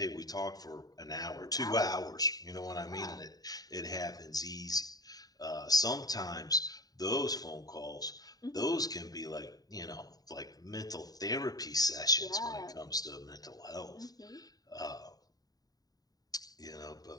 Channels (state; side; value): late; right; 0.18 ms